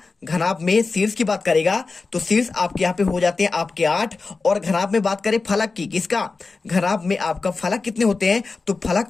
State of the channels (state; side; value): quieter; right; 4.0 dB